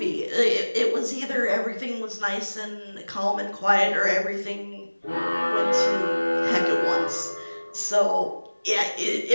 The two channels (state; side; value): inverted; both; correlation -1.00